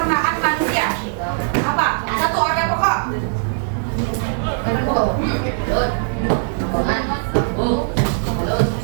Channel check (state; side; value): silent; left; digital silence